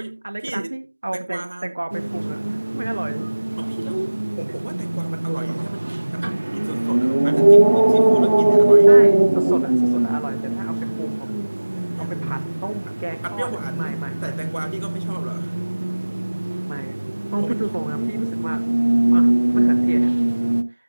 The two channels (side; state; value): both; inverted; correlation -1.00